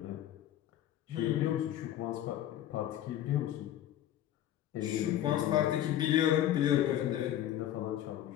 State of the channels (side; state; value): right; quieter; 12.1 dB